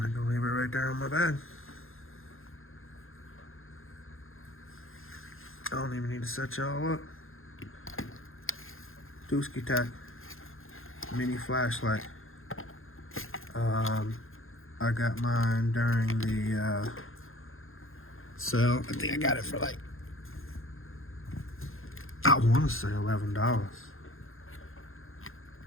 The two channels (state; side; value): late; right; 0.60 ms